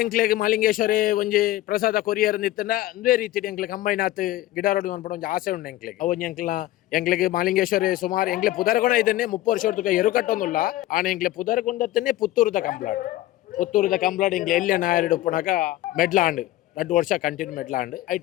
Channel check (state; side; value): quieter; right; 15.6 dB